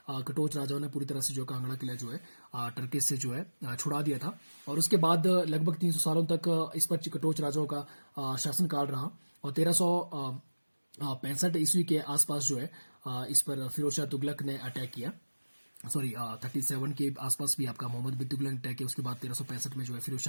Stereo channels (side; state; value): both; inverted; correlation -1.00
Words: कटोच राजाओं ने पूरी तरह से जो कांगड़ा किला जो है टर्किश से जो है छुड़ा दिया था। और उसके बाद लगभग 300 सालों तक इस पर कटोच राजाओं का शासनकाल रहा। और 1365 ईस्वी के आसपास जो है इस पर फिरोज शाह तुगलक ने अटैक किया, सॉरी 37 के आसपास भी आपका मोहम्मद बिन तुगलक ने अटैक किया। उसके बाद 1365 में जो है फिरोज